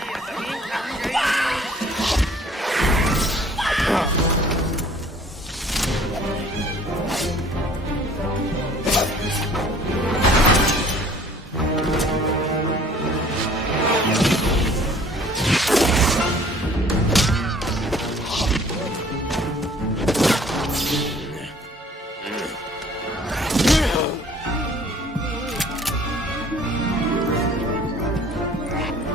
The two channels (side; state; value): both; normal; correlation 0.53